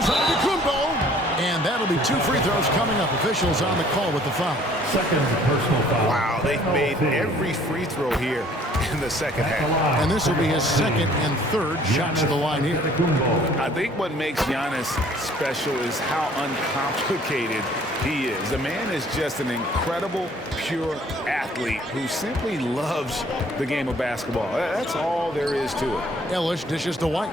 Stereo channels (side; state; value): both; normal; correlation 0.57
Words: Antetokounmpo. And that'll be 2 free throws coming up. Officials on the call with the foul. Second personal foul. Wow, they've made every free throw here in the second half. And this will be his 2nd and 3rd shots to the line here. I think what makes Giannis special is how uncomplicated he is. The man is just an incredible, pure athlete who simply loves the game of basketball. That's all there is to it. Ellis dishes to